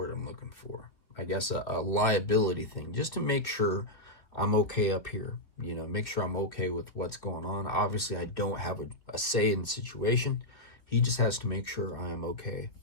I'm looking for? I guess a liability thing, just to make sure I'm okay up here, make sure I'm okay with what's going on. Obviously, I don't have a say in the situation. He just has to make sure I am okay.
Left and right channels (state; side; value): late; right; 2.9 ms